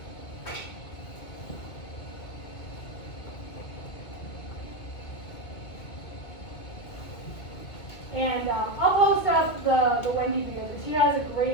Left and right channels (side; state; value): right; late; 2.2 ms